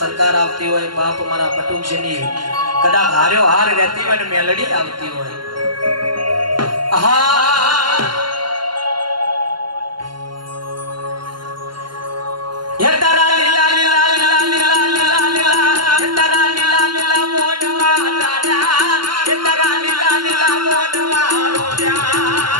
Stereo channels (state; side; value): late; left; 0.72 ms